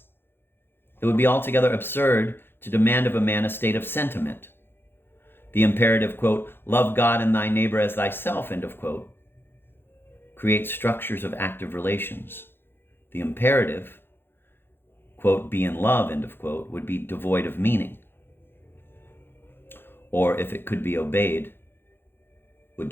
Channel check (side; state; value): right; late; 0.10 ms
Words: It would be altogether absurd to demand of a man a state of sentiment. The imperative, quote, love God and thy neighbor as thyself, end of quote, creates structures of active relations. The imperative, quote, be in love, end of quote, would be devoid of meaning. Or if it could be obeyed, would